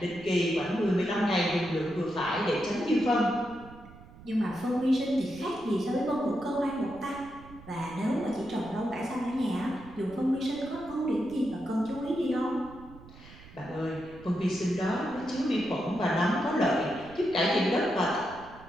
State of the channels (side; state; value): right; noise; rumble, 19 dB below the sound